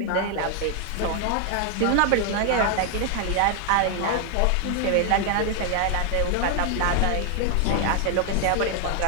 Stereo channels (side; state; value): both; different; correlation 0.00